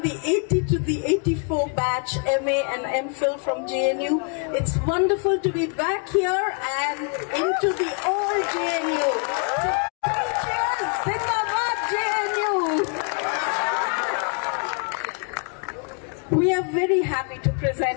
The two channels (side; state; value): right; quieter; 39.8 dB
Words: the 80 to the 84 batch, MA and MPhil from JNU. It's wonderful to be back here and into the old JNU. So, cheers! Zindabad JNU! We are very happy to